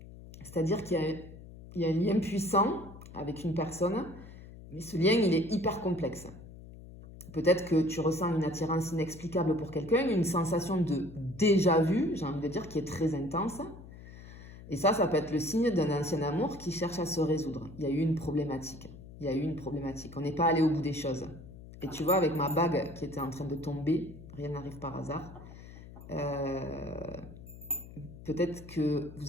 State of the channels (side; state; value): left; noise; hum, 16 dB below the sound